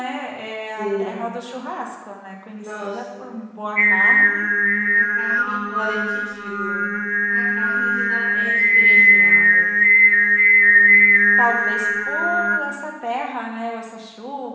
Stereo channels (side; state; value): both; identical; correlation 1.00